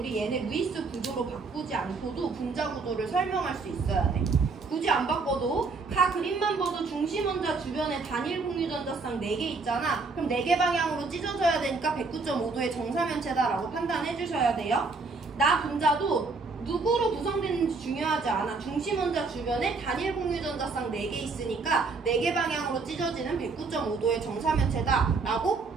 얘네 루이스 구조로 바꾸지 않고도 분자 구조를 설명할 수 있어야 돼. 굳이 안 바꿔도 가 그림만 봐도 중심 원자 주변에 단일 공유 전자쌍 4개 있잖아. 그럼 4개 방향으로 찢어져야 되니까 109.5도의 정사면체다라고 판단해 주셔야 돼요. 나 분자도 누구로 구성되는지 중요하지 않아. 중심 원자 주변에 단일 공유 전자쌍 4개 있으니까 4개 방향으로 찢어지는 109.5도의 정사면체다라고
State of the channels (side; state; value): left; quieter; 4.2 dB